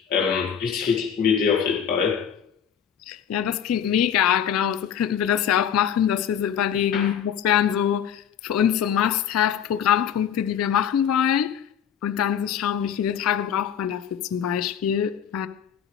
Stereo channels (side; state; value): right; quieter; 8.6 dB